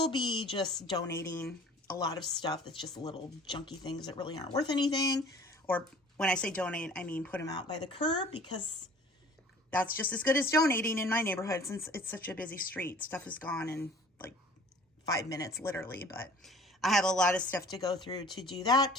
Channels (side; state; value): both; normal; correlation 0.49